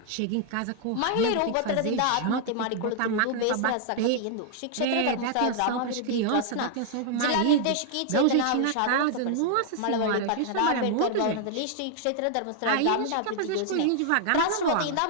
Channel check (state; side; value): different; both; correlation 0.00